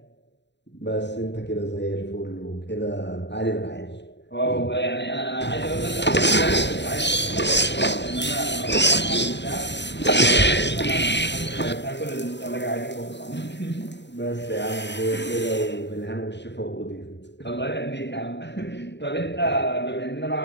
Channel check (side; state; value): right; late; 0.51 ms